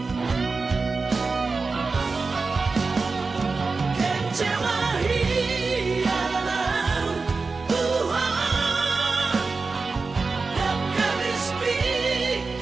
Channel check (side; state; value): left; quieter; 4.1 dB